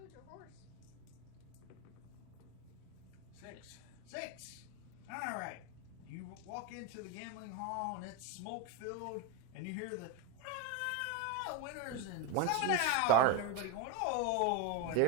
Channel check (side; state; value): both; different; correlation 0.03